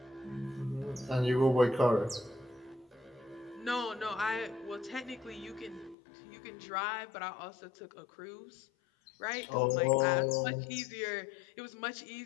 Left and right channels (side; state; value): right; drops out; at 6.0 s